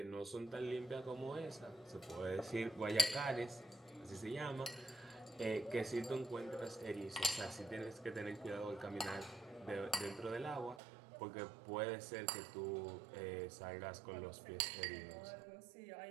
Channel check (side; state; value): left; drops out; at 10.8 s